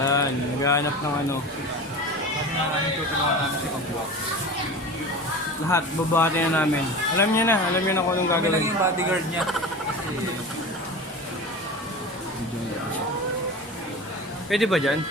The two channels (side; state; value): both; normal; correlation 0.32